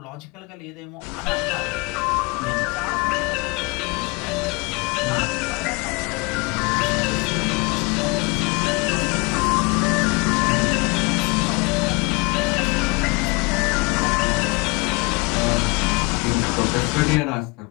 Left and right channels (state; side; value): quieter; right; 26.4 dB